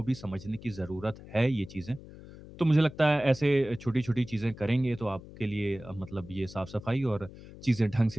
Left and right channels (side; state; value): left; noise; hum, 17 dB below the sound